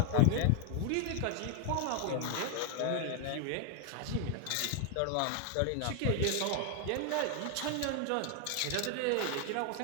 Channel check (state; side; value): different; both; correlation 0.00